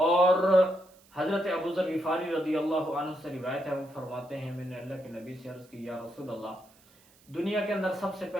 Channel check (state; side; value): noise; right; hiss, 29 dB below the sound